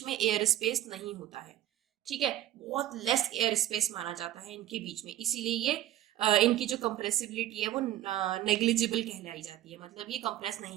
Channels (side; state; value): left; quieter; 13.4 dB